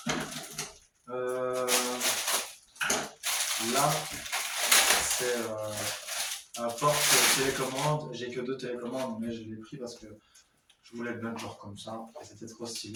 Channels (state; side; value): identical; both; correlation 1.00